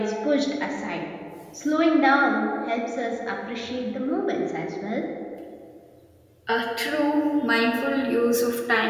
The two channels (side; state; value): both; identical; correlation 1.00